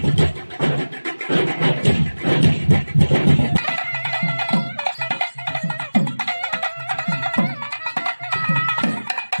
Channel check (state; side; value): inverted; both; correlation -1.00